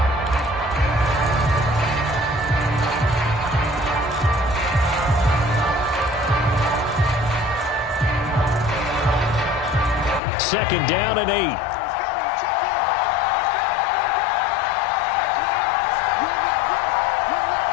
Second down and 8.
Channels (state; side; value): drops out; right; at 10.2 s